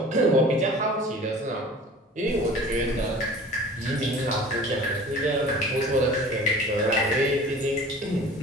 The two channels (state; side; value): normal; both; correlation 0.43